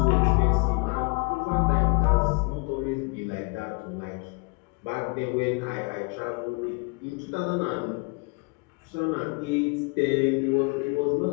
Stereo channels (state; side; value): quieter; right; 31.3 dB